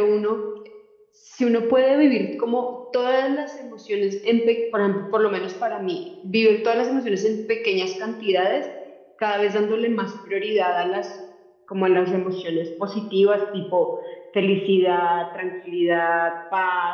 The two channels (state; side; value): identical; both; correlation 1.00